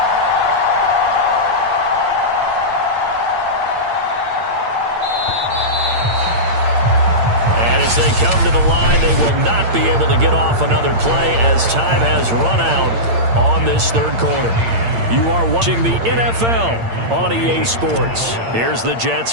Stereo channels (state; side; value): late; left; 8.7 ms